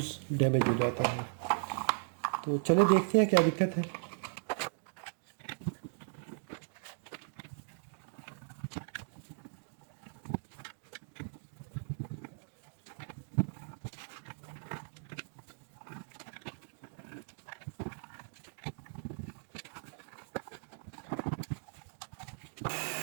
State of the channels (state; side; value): silent; left; digital silence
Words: डैमेज हो जाता है। तो चले देखते हैं क्या दिक्कत है।